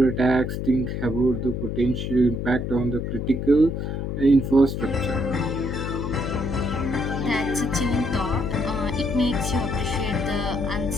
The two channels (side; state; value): left; noise; hum, 3 dB below the sound